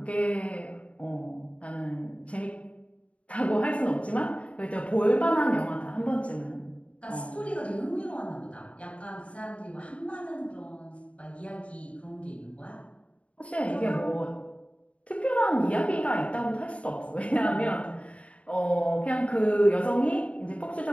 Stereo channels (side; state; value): right; late; 0.063 ms